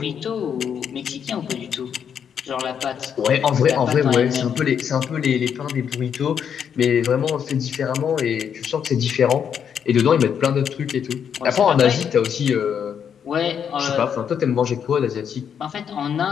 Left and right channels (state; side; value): quieter; right; 7.9 dB